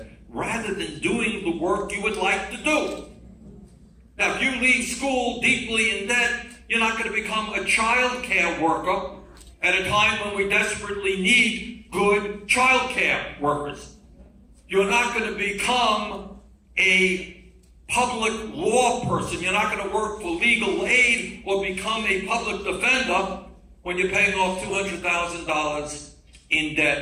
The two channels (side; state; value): both; identical; correlation 1.00